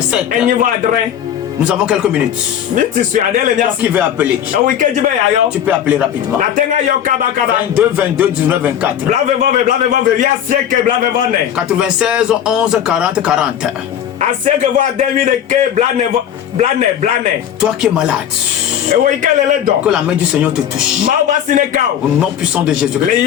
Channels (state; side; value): quieter; right; 9.8 dB